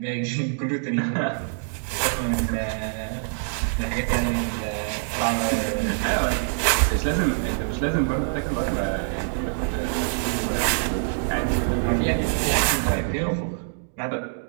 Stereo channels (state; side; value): silent; left; digital silence